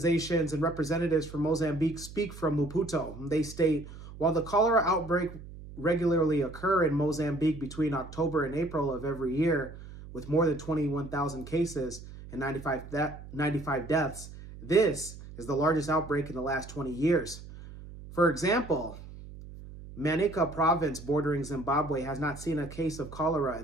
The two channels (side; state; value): right; noise; hum, 15 dB below the sound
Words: and representatives from Mozambique speak from Maputo. They state, while the cholera outbreak regularly occur in Mozambique between October and April of every year, with more than 21,000 cases and 95 deaths, this is the largest outbreak in the last 20 years. For example, Manica province bordering Zimbabwe has not seen a case of cholera